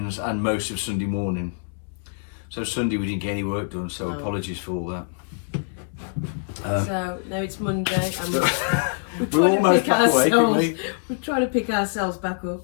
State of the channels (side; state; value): right; silent; 62 dB below the other